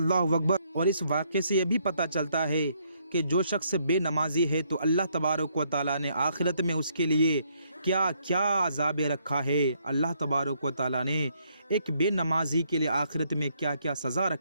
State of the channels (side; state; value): both; inverted; correlation -0.71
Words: اکبر! اور اس واقعے سے یہ بھی پتہ چلتا ہے کہ جو شخص بے نمازی ہے تو اللہ تبارک و تعالیٰ نے آخرت میں اس کے لیے کیا کیا عذاب رکھا ہے۔ اللہ تبارک و تعالیٰ نے ایک بے نمازی کے لیے آخرت میں کیا کیا سزا